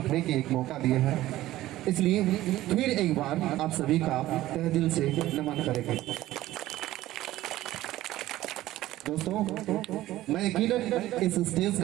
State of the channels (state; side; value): quieter; left; 15.4 dB